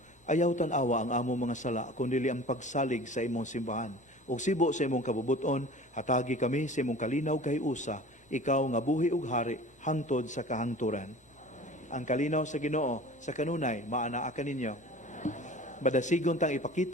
Ayaw tan-awa ang among mga sala, kundi ang pagsalig sa imong simbahan. Ug sibo sa imong kabubuton, hatagi kami sa imong kalinaw kay usa, ikaw nga buhi ug hari hangtod sa kahangturan. Ang kalinaw sa Ginoo sa kanunay maanaa kaninyo. Badasigon tang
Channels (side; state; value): both; normal; correlation 0.42